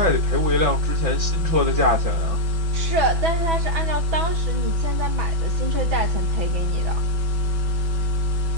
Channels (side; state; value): left; late; 6.0 ms